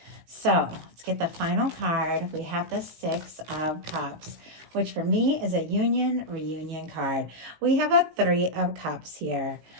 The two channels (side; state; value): left; late; 18 ms